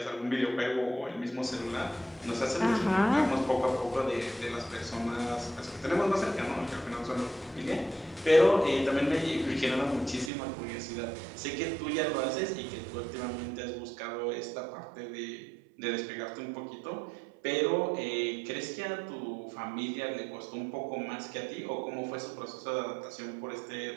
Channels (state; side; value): drops out; left; at 10.3 s